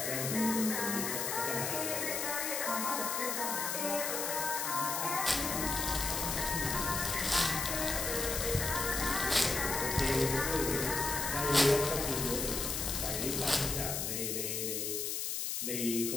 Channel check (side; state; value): left; noise; hiss, 1 dB below the sound